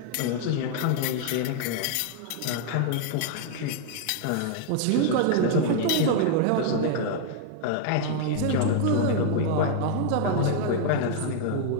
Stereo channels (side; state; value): both; different; correlation 0.00